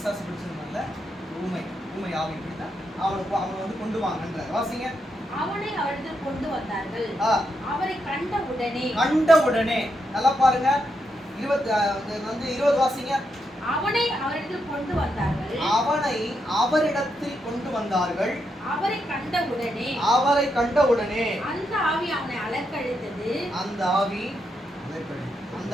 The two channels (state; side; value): normal; both; correlation 0.82